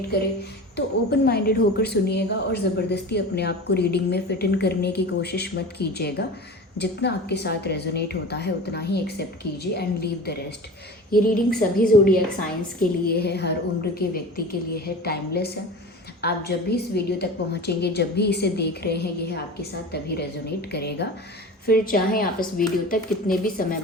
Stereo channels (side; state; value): both; normal; correlation 0.34